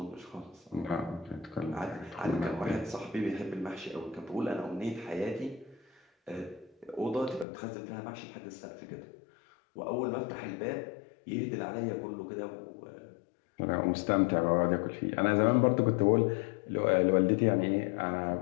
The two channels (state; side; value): drops out; right; at 7.5 s